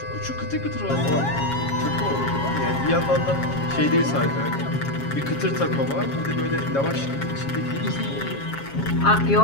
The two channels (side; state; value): right; late; 7.3 ms